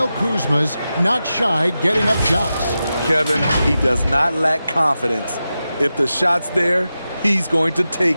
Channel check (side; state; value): both; inverted; correlation -0.92